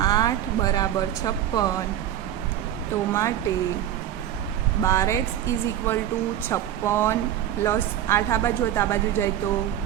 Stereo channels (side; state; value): left; quieter; 11.3 dB